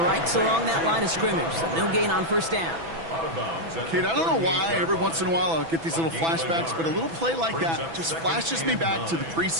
right along that line of scrimmage. So no gain on first down. Out of bounds at Kate, the I don't know why 38-yard every once in a while I'll get these little A gain of a flashbacks, yard. but a little play like Brings that up just second flashes me and back to the 9.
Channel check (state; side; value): late; left; 6.1 ms